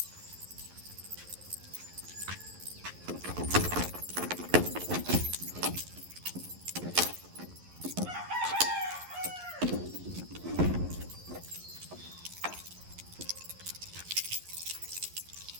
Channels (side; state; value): left; late; 11 ms